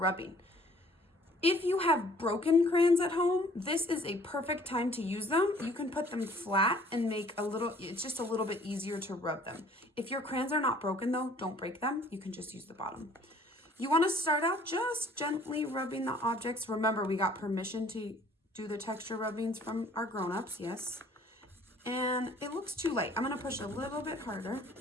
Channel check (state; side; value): normal; both; correlation 0.55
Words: If you have broken crayons at home, this is a perfect time to use them. You can put them flat and make it's just a little bit easier to rub them. If your crayons are not broken though, don't break them. You can just use the bottom. You want to start out just gently rubbing the objects. Remember, we got permission to do the texture rubbings from our grown-ups, yes. And it looks too light. I'm going to push a little bit harder.